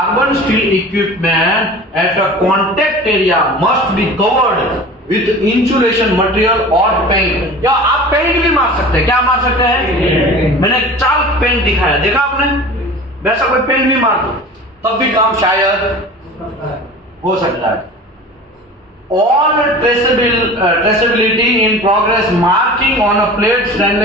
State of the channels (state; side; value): normal; both; correlation 0.38